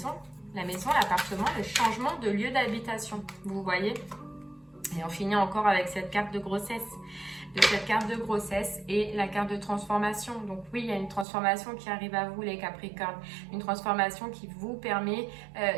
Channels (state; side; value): drops out; left; at 11.2 s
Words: l'appartement, le changement de lieu d'habitation. Vous voyez? Et on finit encore avec cette carte de grossesse. Et la carte de transformation. Donc oui, il y a une transformation qui arrive à vous, les Capricornes. Une transformation qui vous permet